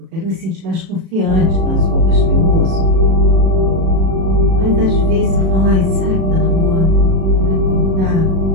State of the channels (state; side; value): late; left; 37 ms